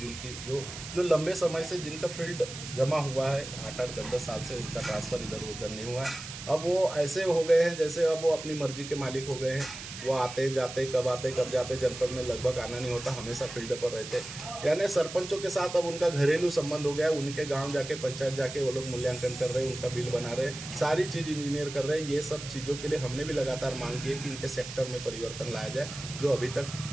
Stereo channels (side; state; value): right; noise; hiss, 11 dB below the sound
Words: जो लंबे समय से जिनका फील्ड जमा हुआ है, 8-8, 10-10 साल से उनका ट्रांसफ़र इधर उधर नहीं हुआ है, अब वो ऐसे हो गए हैं जैसे अब वो अपनी मर्जी के मालिक हो गए हैं। वो आते जाते, कब जाते, जनपद में लगभग आना नहीं होता, हमेशा फील्ड पर रहते। यानी सरपंचों के साथ अब उनका घरेलू संबंध हो गया है। उनके गांव जाके, पंचायत जाके वो लोग मूल्यांकन कर रहे हैं, उनका बिल बना रहे हैं, सारी चीज़ इंजीनियर कर रहे हैं। ये सब चीज़ों के लिए हमने भी लगातार मांग की है कि इनके सेक्टर में परिवर्तन लाया जाए, जो अभी तक